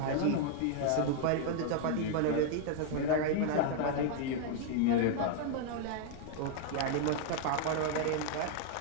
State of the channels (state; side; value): different; both; correlation 0.00